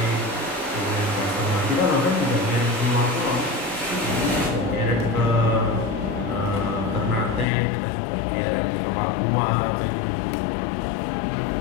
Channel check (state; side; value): drops out; right; at 7.5 s